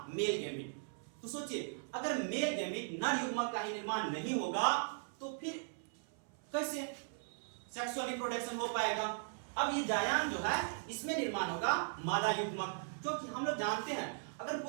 मेल गैमीट। तो सोचिए अगर मेल गैमीट नर युग्मक का ही निर्माण नहीं होगा तो फिर कैसे सेक्सुअल रिप्रोडक्शन हो पाएगा? अब ये जायांग जो है इसमें निर्माण होगा मादा युग्मक, क्योंकि हम लोग जानते हैं अगर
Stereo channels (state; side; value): silent; left; 52 dB below the other